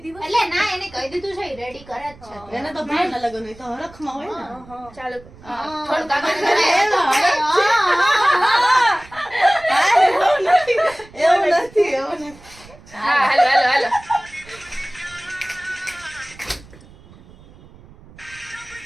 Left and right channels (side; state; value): right; noise; rumble, 23 dB below the sound